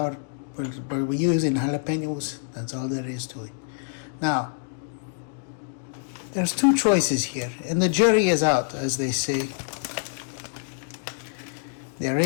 We're using jalapenos. That's all there is to it. Now, there's two choices here, and the jury is out, as they say. They're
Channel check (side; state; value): right; silent; digital silence